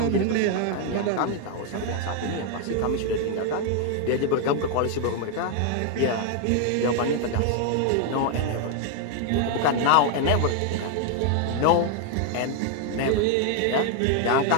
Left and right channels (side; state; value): both; different; correlation 0.00